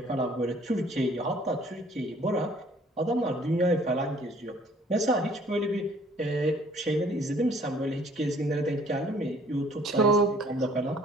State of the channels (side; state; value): both; normal; correlation 0.58